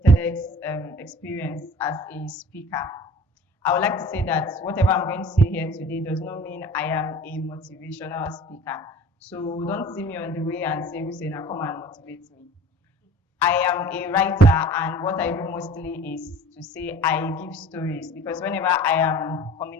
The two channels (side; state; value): both; normal; correlation 0.46